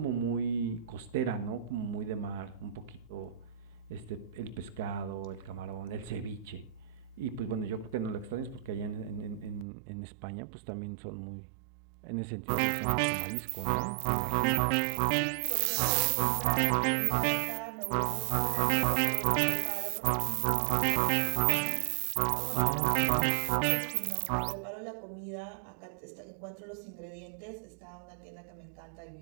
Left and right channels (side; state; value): left; drops out; at 9.7 s